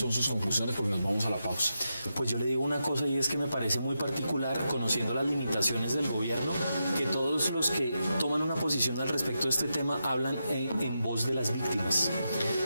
sus conclusiones? Porque nos vamos a la pausa. Pues yo le digo una cosa, y es que me parece muy particular, conociendo las limitaciones del gobierno, que todos los que toman una posición al respecto de este tema hablan en voz de las víctimas.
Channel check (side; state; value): both; inverted; correlation -0.87